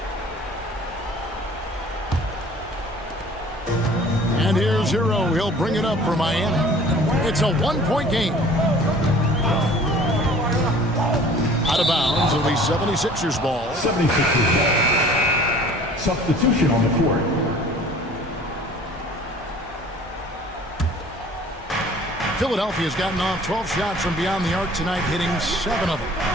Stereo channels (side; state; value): both; normal; correlation 0.49